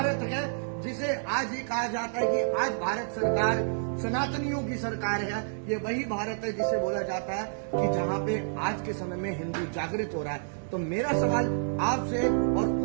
है जिसे आज ये कहा जाता है कि आज भारत सरकार सनातनियों की सरकार है। ये वही भारत है जिसे बोला जाता है कि जहाँ पे आज के समय में हिंदू जागृत हो रहा है। तो मेरा सवाल आपसे और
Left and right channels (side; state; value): left; silent; digital silence